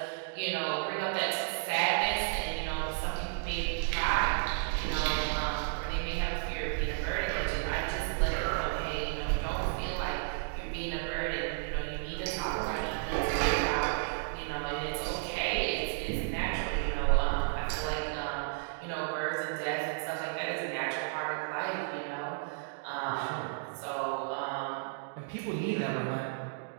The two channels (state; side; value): silent; left; digital silence